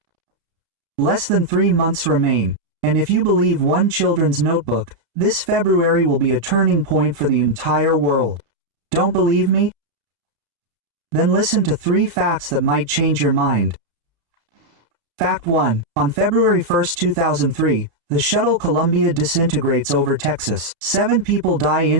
Less than 3 months remain, and if you believe one children's notebook, this February will be a turning point for the entire world. Don't believe me? Then listen to 3 facts that might change your mind. Fact 1. On February 1, 2003, the shuttle Columbia disintegrates over Texas. 7 people die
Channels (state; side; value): late; left; 33 ms